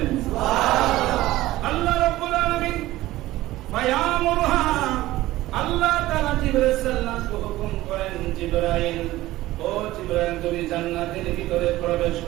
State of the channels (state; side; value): quieter; left; 16.7 dB